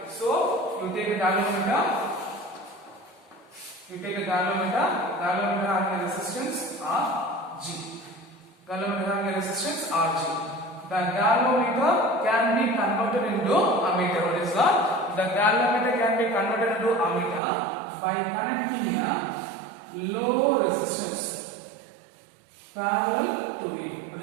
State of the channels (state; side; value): drops out; left; at 17.4 s